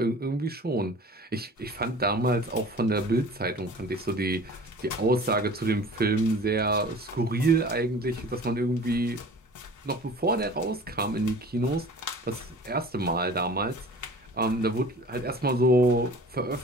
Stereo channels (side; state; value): both; normal; correlation 0.43